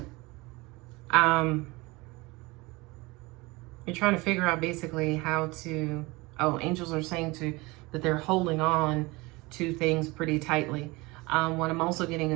you're trying to figure out basically how to. Oh, angels are saying that they're holding on to things pretty tightly. What I'm also getting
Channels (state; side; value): quieter; left; 23.4 dB